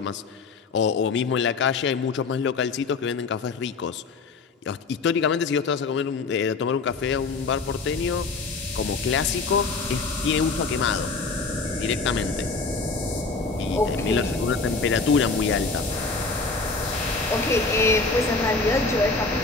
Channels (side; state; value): right; quieter; 4.1 dB